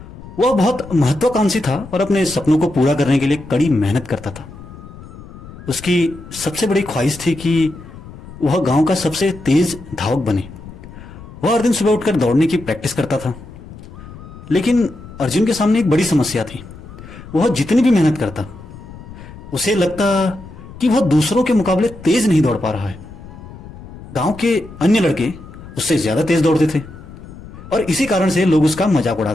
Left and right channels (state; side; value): noise; left; rumble, 16 dB below the sound